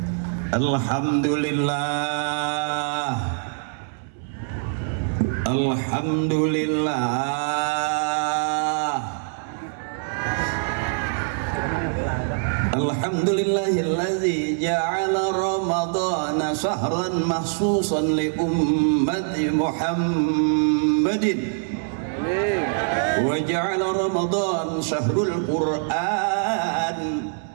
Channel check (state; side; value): silent; left; 63 dB below the other